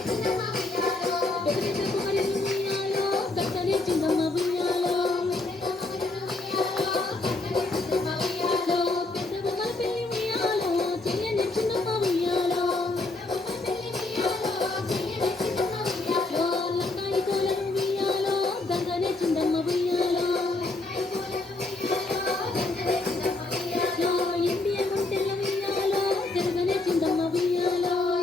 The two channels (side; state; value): right; quieter; 3.1 dB